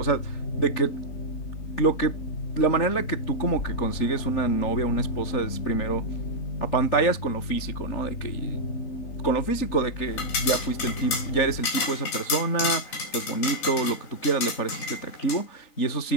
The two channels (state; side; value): late; right; 3.9 ms